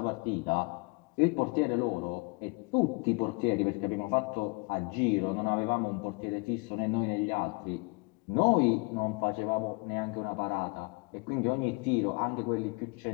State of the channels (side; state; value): right; quieter; 31.1 dB